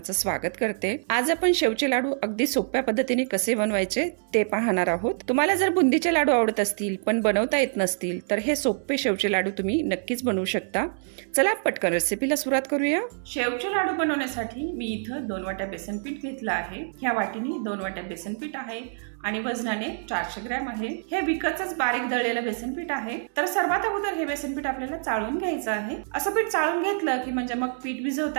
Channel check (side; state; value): left; silent; digital silence